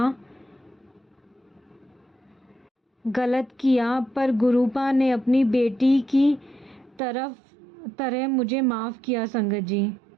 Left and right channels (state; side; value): drops out; left; at 7.0 s